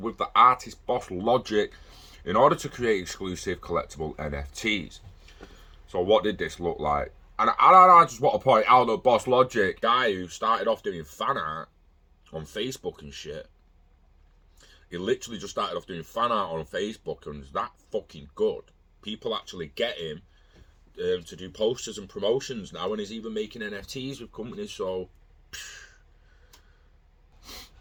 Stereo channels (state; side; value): identical; both; correlation 1.00